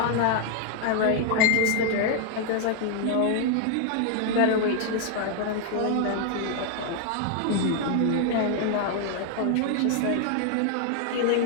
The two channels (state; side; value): different; both; correlation 0.00